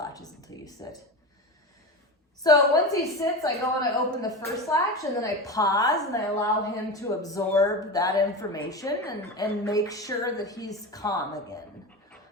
until you sit. So once he sits, I go and I open the first latch and then I pause and I allow him to absorb that information and make sure that he's calm again.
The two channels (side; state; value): both; normal; correlation 0.24